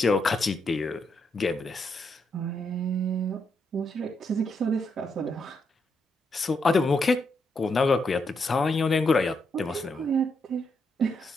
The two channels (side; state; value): both; normal; correlation 0.79